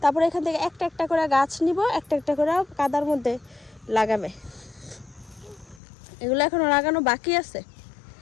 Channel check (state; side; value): drops out; right; at 5.8 s